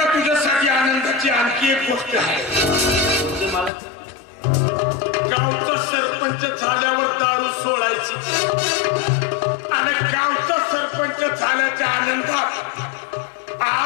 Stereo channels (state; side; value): drops out; right; at 3.7 s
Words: तुझ्यासाठी आनंदाची आणखी एक गोष्ट आहे गावचा सरपंच झाल्यावर दारू सोडायची आणि गावचा सरपंच झाल्याच्या आनंदात